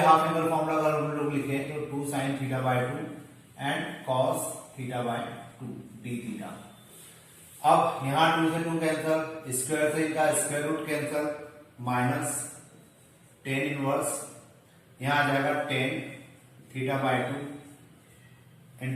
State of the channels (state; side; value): identical; both; correlation 1.00